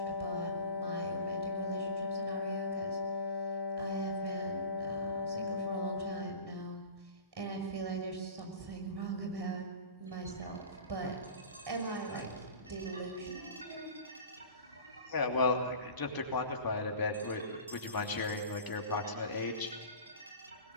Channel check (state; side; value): inverted; both; correlation -0.39